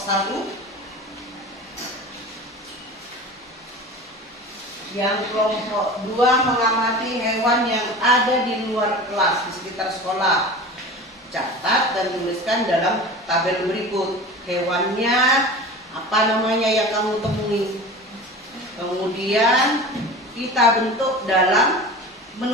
Yang kelompok 2 mengamati hewan yang ada di luar kelas, di sekitar sekolah. Catat dan tuliskan dalam tabel berikut. Hewannya apa namanya yang kamu temui. Kemudian kita bentuk dalam,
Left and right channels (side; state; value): both; normal; correlation 0.35